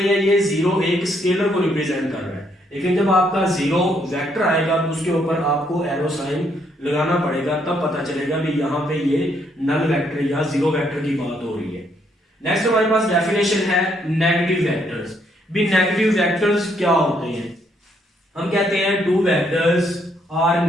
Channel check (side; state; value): both; normal; correlation 0.72